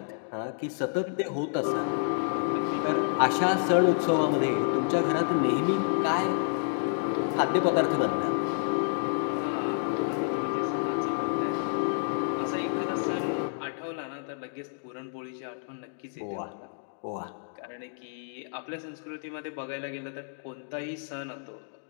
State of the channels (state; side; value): silent; right; digital silence